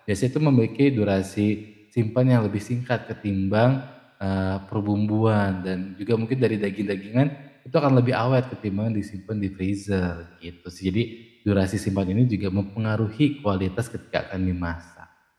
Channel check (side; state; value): both; identical; correlation 1.00